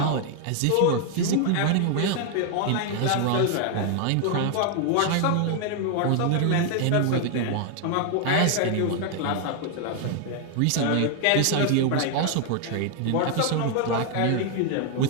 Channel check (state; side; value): different; both; correlation 0.00